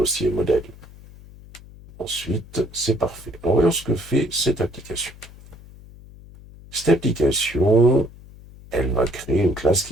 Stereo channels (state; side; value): noise; left; hum, 20 dB below the sound